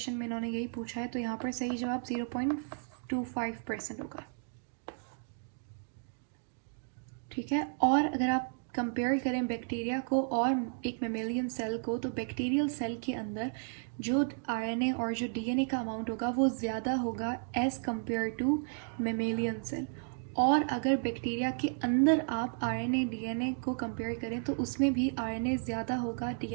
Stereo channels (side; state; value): left; silent; 56 dB below the other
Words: में इन्होंने यही पूछा है। तो यहाँ पर सही जवाब 0.25% होगा, ठीक है। और अगर आप कंपेयर करें बैक्टीरिया को और एक मेमेलियन सेल को, तो बैक्टीरियल सेल के अंदर जो आरएनए और जो डीएनए का अमाउंट होगा वो ज़्यादा होगा as compare to mammalian cell. और अगर बैक्टीरिया के अंदर आप आरएनए डीएनए को कंपेयर करें तो उसमें भी आरएनए ज़्यादा होगा